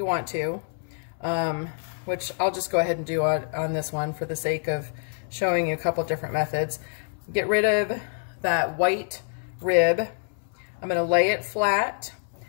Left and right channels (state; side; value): silent; right; 61 dB below the other